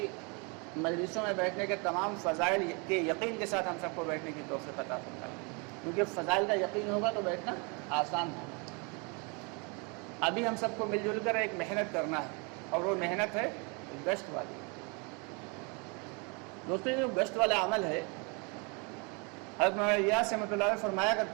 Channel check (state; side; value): quieter; left; 32.3 dB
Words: مجلسوں میں بیٹھنے کے تمام فضائل کے یقین کے ساتھ ہم سب کو بیٹھنے کی توفیق عطا فرمائے، کیونکہ فضائل کا یقین ہوگا تو بیٹھنا آسان ہوگا. ابھی ہم سب کو مل جل کر ایک محنت کرنا ہے، اور وہ محنت ہے گشت والی. دوستوں، یہ جو گشت والا عمل ہے، حضرت مولانا الیاس رحمۃ اللہ علیہ فرمایا